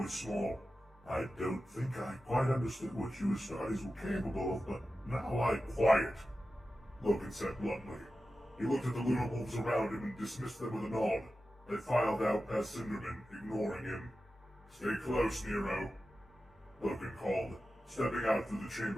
small. I don't think I quite understood what you Astartes were capable of, but now quiet, Loken said bluntly. He looked at the lunar wolves around him and dismissed them with a nod. They filed out past Cinderman, ignoring him. Stay close, Nero, Loken called, stepping out through the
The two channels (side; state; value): both; normal; correlation 0.93